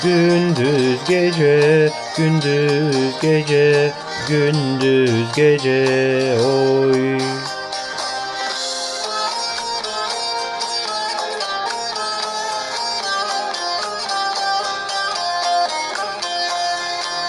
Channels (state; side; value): identical; both; correlation 1.00